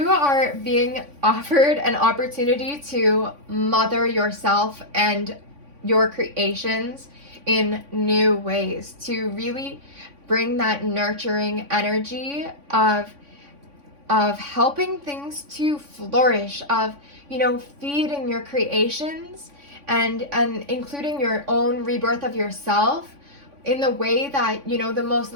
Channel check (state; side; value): late; left; 3.5 ms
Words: are being offered an opportunity to mother yourself and your creations in new ways, to really bring that nurturing energy of helping things to flourish, of, you know, feeding your creations and including your own rebirth of yourself in the way that, you know, the most